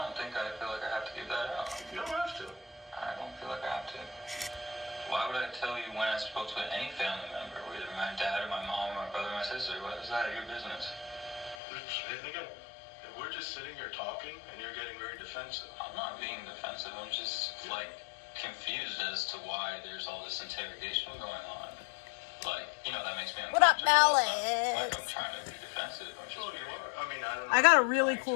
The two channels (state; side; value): drops out; right; at 11.6 s